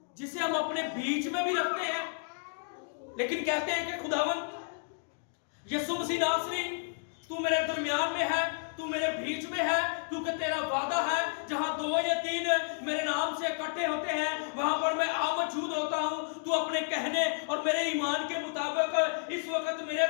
جسے ہم اپنے بیچ میں بھی رکھتے ہیں لیکن کہتے ہیں کہ خداوند یسوع مسیح ناصری تو میرے درمیان میں ہے, تو میرے بیچ میں ہے, کیونکہ تیرا وعدہ ہے جہاں 2 یا 3 میرے نام سے اکٹھے ہوتے ہیں وہاں پر میں موجود ہوتا ہوں. تو اپنے کہنے اور میرے ایمان کے مطابق اس وقت میرے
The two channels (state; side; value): silent; right; digital silence